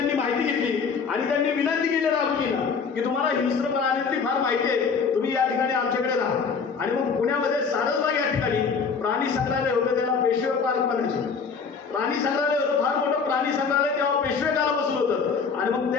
माहिती घेतली आणि त्यांनी विनंती केली राघोजीला की तुम्हाला हिंस्र प्राण्यांची फार माहिती आहे, तुम्ही या ठिकाणी आमच्याकडे राहा. आणि मग पुण्यामध्ये सारसबाग या ठिकाणी प्राणी संग्रहालय होतं, त्याला पेशवे पार्क म्हणायचे. प्राणी संग्रहालय होतं, फार मोठं प्राणी संग्रहालय तेव्हा पेशवे काळापासून होतं. आणि मग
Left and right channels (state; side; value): quieter; right; 5.5 dB